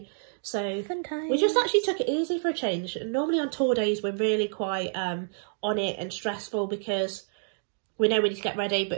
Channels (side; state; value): left; silent; digital silence